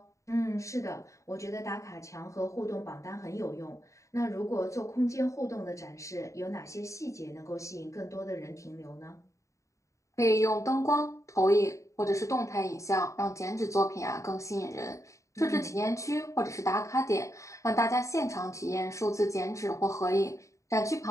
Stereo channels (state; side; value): late; right; 0.15 ms